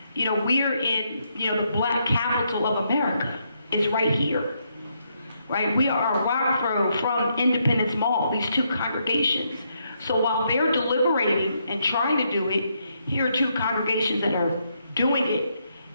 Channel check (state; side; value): inverted; both; correlation -0.77